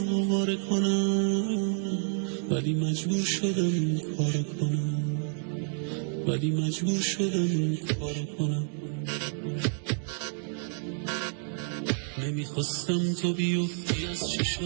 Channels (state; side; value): silent; left; 58 dB below the other